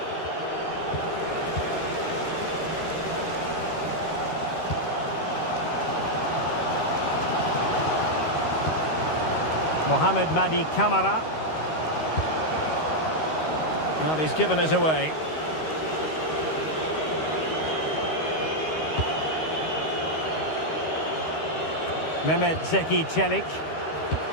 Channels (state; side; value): late; right; 13 ms